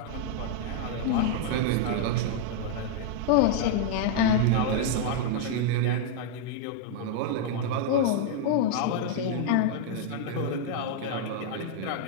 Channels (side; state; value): both; different; correlation -0.01